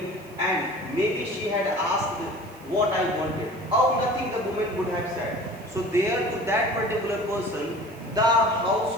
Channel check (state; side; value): noise; right; hiss, 25 dB below the sound